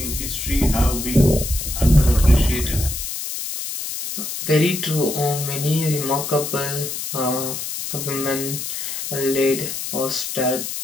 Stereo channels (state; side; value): noise; left; hiss, 5 dB below the sound